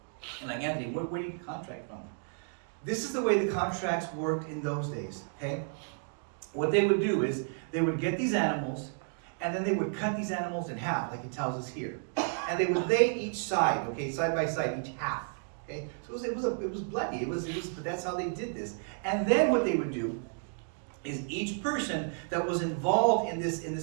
And like, Anthony, where do you get the contract from? This is the way the contracts worked in those days, okay? What they would do is they would get these animals, and then they would cut these animals in half, like it tells us here. And they would lay each side, okay, side by side, each half, okay? So it was bloody. But that's how they did this. And then what they would do is each person that was involved in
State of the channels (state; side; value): silent; left; 56 dB below the other